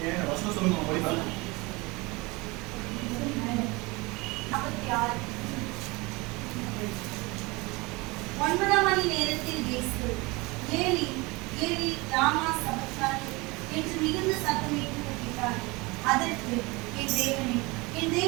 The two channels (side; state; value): left; quieter; 24.6 dB